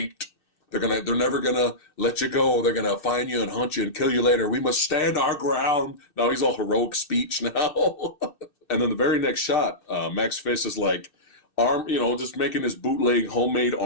They're never gonna let you go. They're gonna find you and hunt you and kill you later. We must stand our ground. Now he's all heroic speech now. And then the very next shot, Max Fist is like, just making his bootleg homemade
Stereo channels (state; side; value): late; right; 2.6 ms